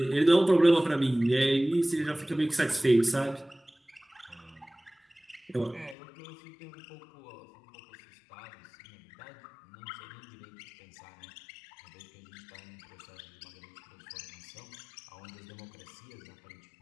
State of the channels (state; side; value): drops out; right; at 6.0 s